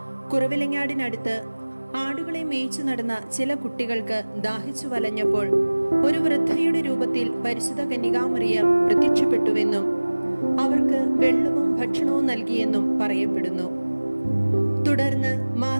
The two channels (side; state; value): both; inverted; correlation -1.00